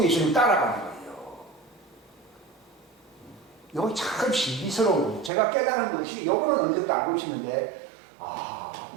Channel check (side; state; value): left; drops out; at 5.3 s